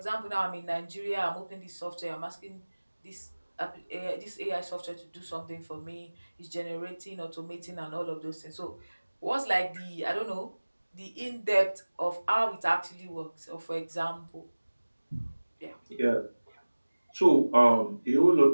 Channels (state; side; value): inverted; both; correlation -1.00